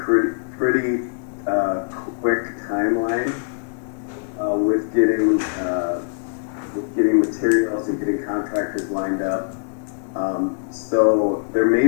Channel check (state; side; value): silent; right; digital silence